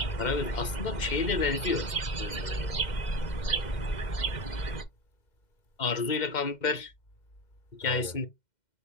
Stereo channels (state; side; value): late; right; 2.1 ms